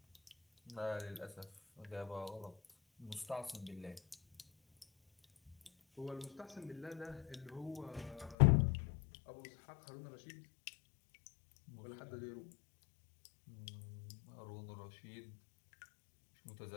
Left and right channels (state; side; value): drops out; right; at 8.3 s